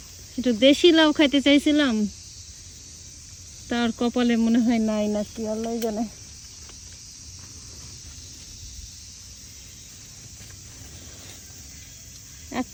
একটু দেশি লাউ খাইতে চাইছিলাম, তার কপালে মনে হয় নাই নাকি, আল্লাহ জানে।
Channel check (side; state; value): both; identical; correlation 1.00